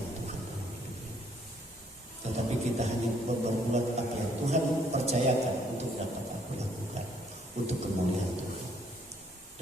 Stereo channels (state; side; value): normal; both; correlation 0.66